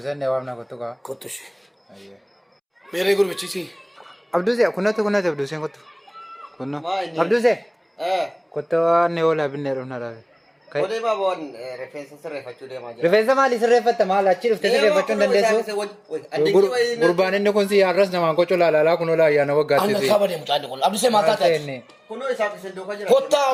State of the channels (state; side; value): identical; both; correlation 1.00